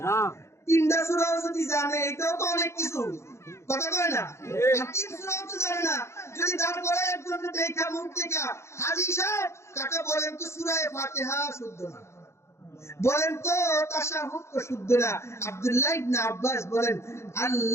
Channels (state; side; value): late; right; 0.13 ms